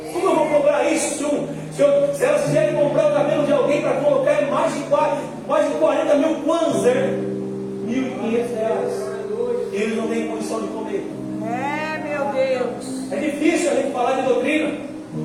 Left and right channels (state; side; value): identical; both; correlation 1.00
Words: Como eu vou cobrar isso se elas quiserem comprar o cabelo de alguém para colocar em mais de 40 mil kwanzas, R$1.500? Eles não têm condição de comer. É, meu Deus. É difícil a gente falar de doutrina.